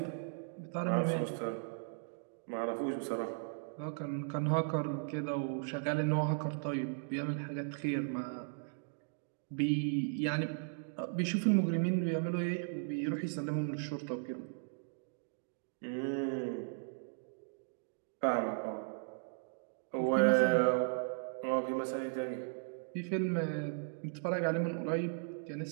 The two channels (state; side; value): silent; left; digital silence